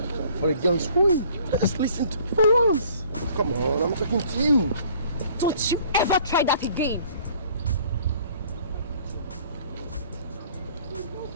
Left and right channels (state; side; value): inverted; both; correlation -0.55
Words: for a girl's win. Just listen to me for once. Come on, I'm talking to you. Don't you ever try that again.